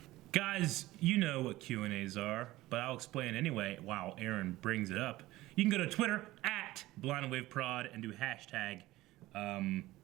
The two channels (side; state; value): left; quieter; 17.5 dB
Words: Guys, you know what Q&As are, but I'll explain anyway while Aaron brings it up. You can go to Twitter at BlindWaveProd and do hashtag